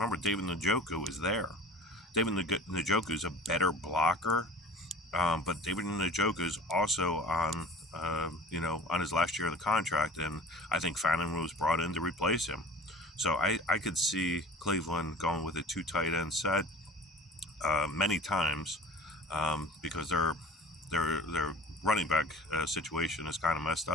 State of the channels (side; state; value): both; normal; correlation 0.42